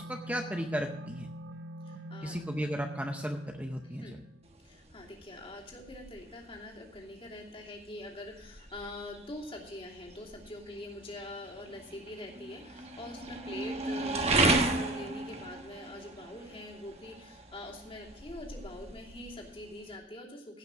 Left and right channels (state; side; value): normal; both; correlation 0.45